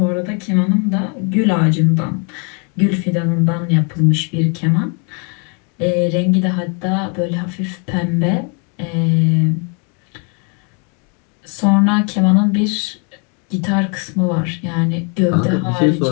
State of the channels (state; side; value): quieter; right; 37.0 dB